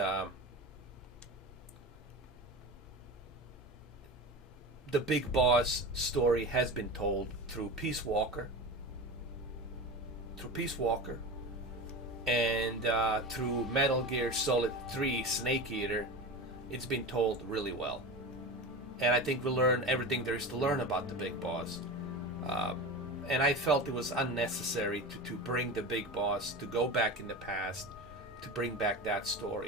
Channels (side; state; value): both; normal; correlation 0.27